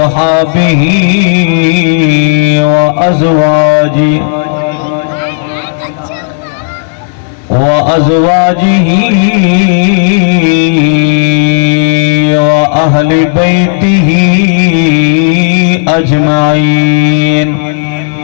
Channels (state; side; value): silent; right; digital silence